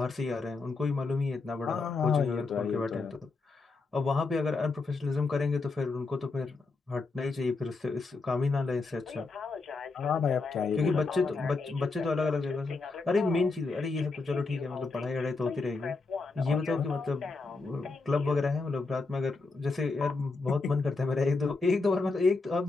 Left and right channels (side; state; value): right; quieter; 3.8 dB